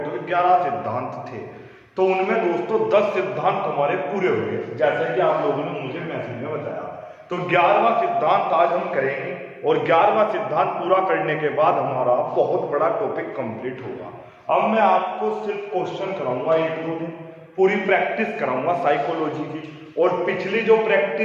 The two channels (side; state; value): both; identical; correlation 1.00